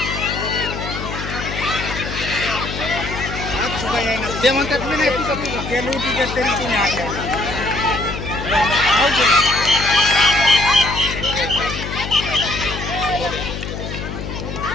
ते म्हणतात मी नाही तुझं तुझं ते लुटी गेल तरी तुम्ही आल्या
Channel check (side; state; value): left; noise; hum, 7 dB below the sound